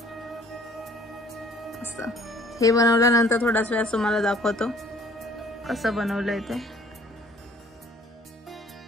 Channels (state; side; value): normal; both; correlation 0.56